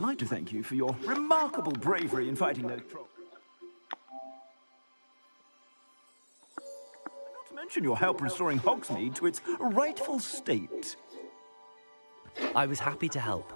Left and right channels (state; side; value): inverted; both; correlation -1.00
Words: to thank you for your remarkable bravery in fighting those trolls. Not to mention your help restoring Hogsmeade to its rightful state. I was happy to